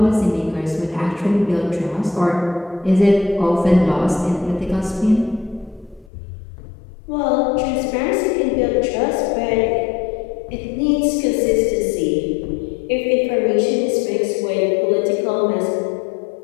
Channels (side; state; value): right; drops out; at 6.1 s